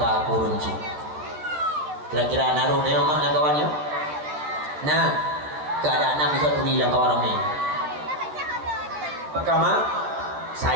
kurunci. Kira-kira naruh dia mak nak kawannya. Nah, keadaan nak bisa tuni lang kawan ramai. Pertama,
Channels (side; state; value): left; late; 13 ms